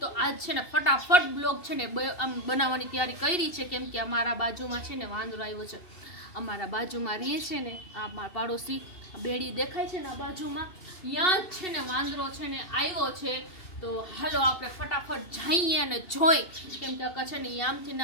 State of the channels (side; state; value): right; late; 2.7 ms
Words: आज छे ने फटाफट ब्लॉग छे ने आम बनाववानी तैयारी करी छे केम के अमारा बाजुमां छे ने वांदरो आव्यो छे अमारा बाजुमां रहीए छे ने आ मारा पाड़ोशी बेड़ी देखाय छे ने बाजुमां यां ज छे ने वांदरो छे ने आव्यो छे तो हालो आपणे फटाफट जाईए अने जोई केम के आ छे ने आमथी